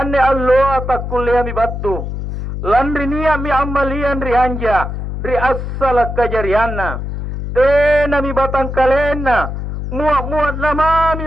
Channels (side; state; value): left; noise; hum, 5 dB below the sound